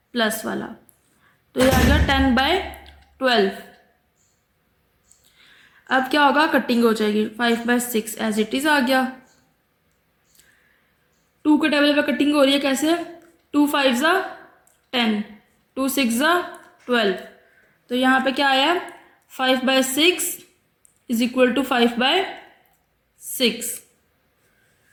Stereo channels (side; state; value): both; identical; correlation 1.00